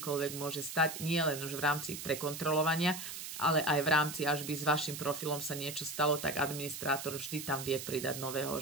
môže stať, nie len už v rámci prekontrolovania, ale aj v rámci, až by s vašim profilom sa niečo stalo, tak administrátor vždy tam vie pridať nového,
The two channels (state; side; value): noise; right; hiss, 8 dB below the sound